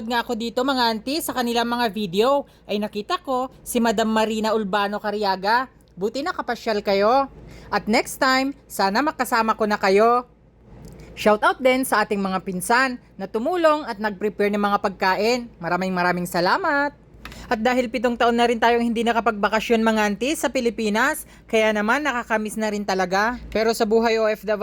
nga ako dito mga auntie sa kanilang mga video, ay nakita ko si Madam Marina Urbano Cariaga. Buti nakapasyal kayo. At next time, sana makasama ko na kayo. Shoutout din sa ating mga pinsan na tumulong at nag-prepare ng mga pagkain. Maraming salamat. At dahil 7 taon na rin tayong hindi nakapagbakasyon mga auntie sa Pilipinas, kaya naman nakakamiss na rin talaga. Pero sa buhay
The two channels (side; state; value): both; identical; correlation 1.00